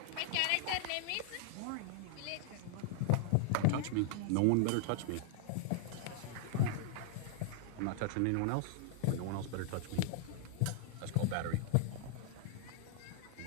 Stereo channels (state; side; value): different; both; correlation -0.01